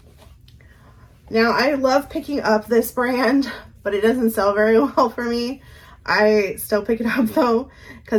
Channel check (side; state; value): both; identical; correlation 1.00